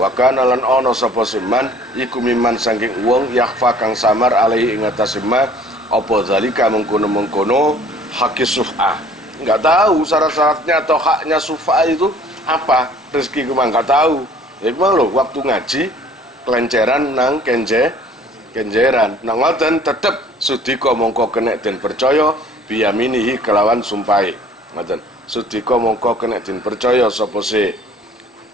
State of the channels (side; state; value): both; normal; correlation 0.53